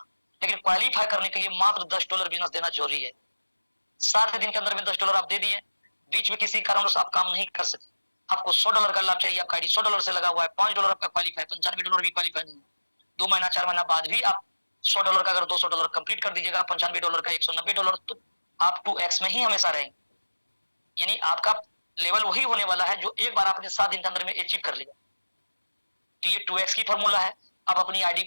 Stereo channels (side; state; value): both; inverted; correlation -1.00